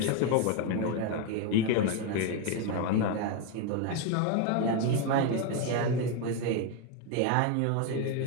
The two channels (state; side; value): different; both; correlation 0.02